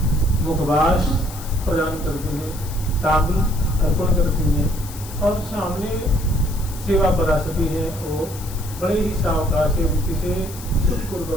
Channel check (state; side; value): noise; left; hiss, 15 dB below the sound